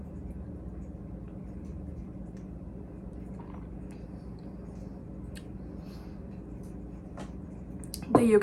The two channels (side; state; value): both; identical; correlation 1.00